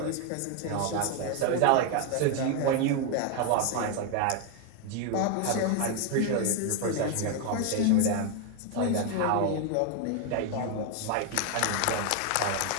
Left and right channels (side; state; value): both; different; correlation 0.01